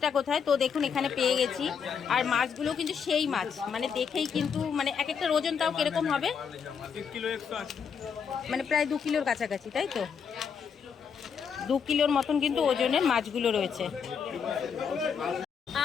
কোথায়, তো দেখুন এখানে পেয়ে গেছি। আর মাছগুলো কিন্তু সেই মাছ, মানে দেখেই কিন্তু মানে এক একটা ওজন তাও কিরকম হবে? মানে প্রায় 2 কিলোর কাছাকাছি, তাই তো? 2 কিলোর মতন কিন্তু ওজনের মাছগুলো রয়েছে।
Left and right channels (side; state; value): right; quieter; 6.7 dB